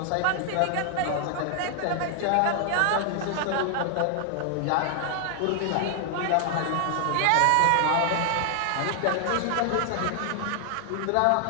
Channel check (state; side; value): different; both; correlation 0.00